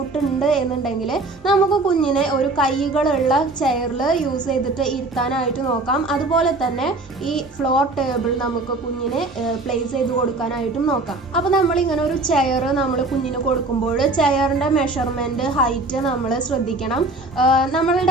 എന്നുണ്ടെങ്കിൽ നമുക്ക് കുഞ്ഞിനെ ഒരു കൈകളുള്ള ചെയറിൽ യൂസ് ചെയ്തിട്ട് ഇരുത്താനായിട്ട് നോക്കാം. അതുപോലെ തന്നെ ഈ ഫ്ലോർ ടേബിൾ നമുക്ക് കുഞ്ഞിനെ പ്ലേസ് ചെയ്ത് കൊടുക്കാനായിട്ടും നോക്കാം. അപ്പോൾ നമ്മളിങ്ങനെ ഒരു ചെയർ നമ്മൾ കുഞ്ഞിന് കൊടുക്കുമ്പോൾ ചെയറിൻ്റെ മെഷർമെൻറ്റ്, ഹൈറ്റ് നമ്മൾ ശ്രദ്ധിക്കണം.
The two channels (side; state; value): left; quieter; 3.1 dB